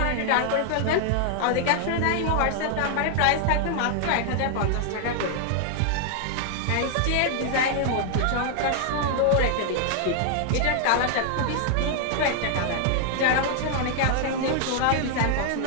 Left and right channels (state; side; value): different; both; correlation 0.00